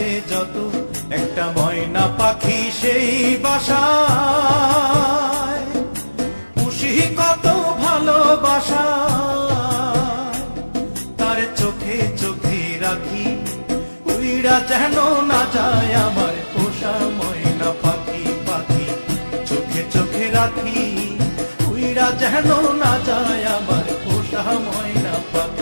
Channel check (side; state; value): both; inverted; correlation -1.00